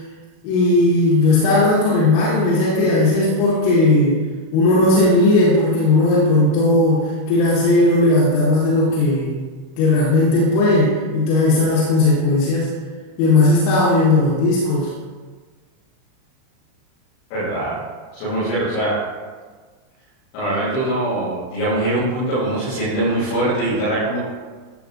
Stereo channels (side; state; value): right; late; 38 ms